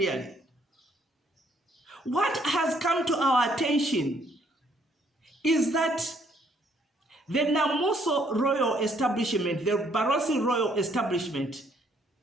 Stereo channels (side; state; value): both; normal; correlation 0.67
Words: What has come to our attention is that the Namuso royal establishment, the Barotse royal establishment,